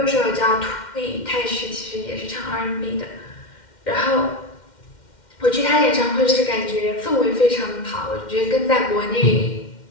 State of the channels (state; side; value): late; right; 2.1 ms